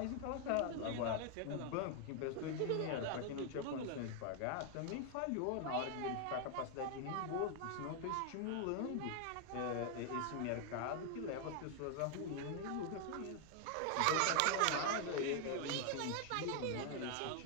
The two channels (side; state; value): both; different; correlation 0.00